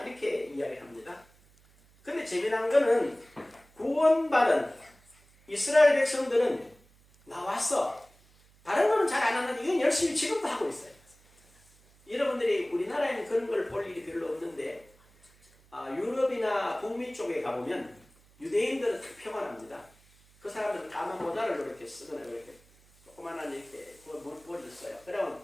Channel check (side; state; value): right; noise; hum, 29 dB below the sound